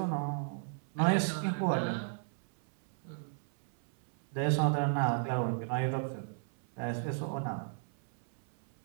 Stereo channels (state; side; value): silent; left; 55 dB below the other